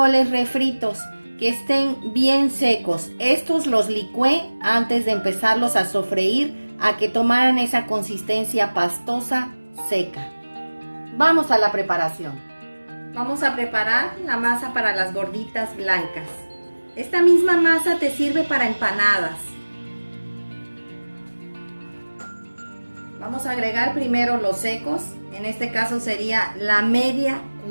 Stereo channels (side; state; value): both; inverted; correlation -1.00